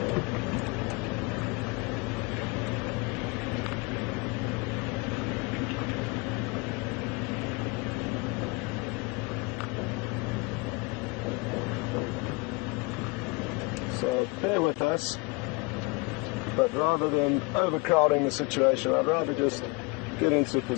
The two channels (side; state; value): right; quieter; 28.6 dB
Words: So bear with us, but rather than overcrowding the situation, I'd rather just get into a